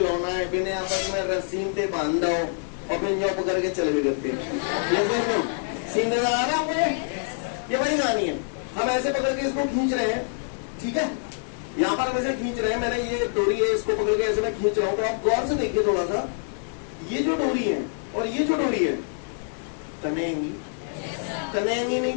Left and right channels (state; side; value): silent; right; digital silence